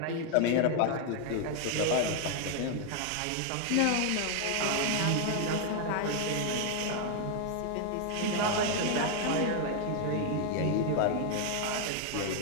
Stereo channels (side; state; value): both; different; correlation 0.00